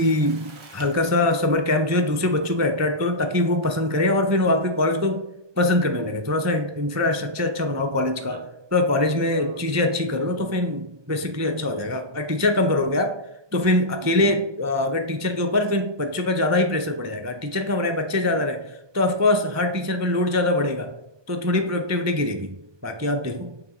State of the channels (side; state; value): left; late; 1.2 ms